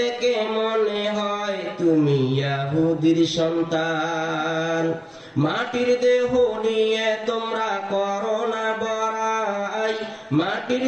মনে হয় তুমি ইহুদির সন্তান। মাটির দেহ নিয়ে তোমরা করো না বড়াই, মাটির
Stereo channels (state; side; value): identical; both; correlation 1.00